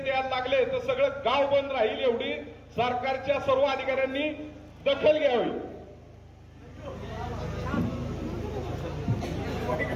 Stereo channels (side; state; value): both; identical; correlation 1.00